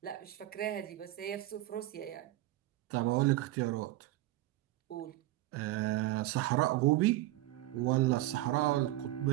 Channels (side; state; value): left; quieter; 16.7 dB